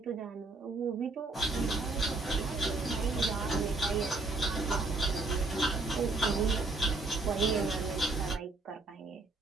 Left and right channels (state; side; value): quieter; left; 3.3 dB